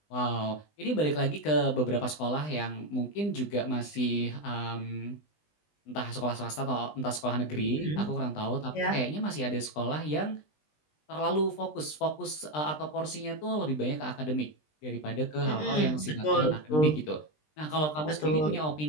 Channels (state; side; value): late; right; 20 ms